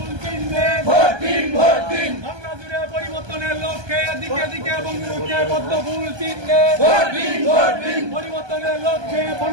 চিহ্নে, ভোট দিন, ভোট দিন, বাংলা জুড়ে পরিবর্তনের লক্ষ্যে দিকে দিকে বঙ্গবন্ধুকে পদ্ম ফুল চিহ্নে, ভোট দিন, ভোট দিন, পরিবর্তনের লক্ষ্যে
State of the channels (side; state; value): left; late; 1.2 ms